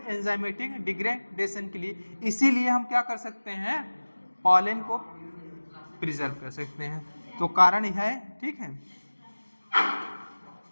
एंजाइमेटिक डिग्रेडेशन के लिए। इसीलिए हम क्या कर सकते हैं, पॉलन को प्रिजर्व कर सकते हैं। तो कारण यह है, ठीक है।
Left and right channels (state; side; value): inverted; both; correlation -1.00